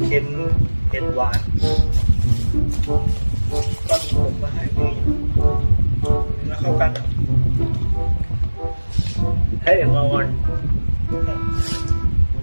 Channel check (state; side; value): inverted; both; correlation -1.00